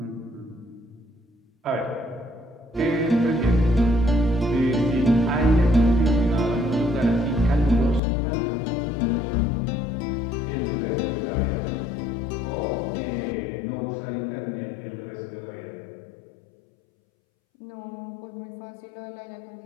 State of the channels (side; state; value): right; drops out; at 8.0 s